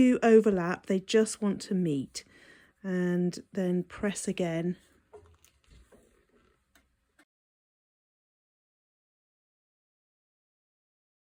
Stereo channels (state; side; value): identical; both; correlation 1.00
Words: overlap, they just want to meet. And then press again.